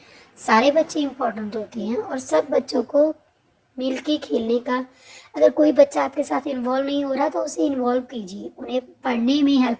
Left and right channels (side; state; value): both; identical; correlation 1.00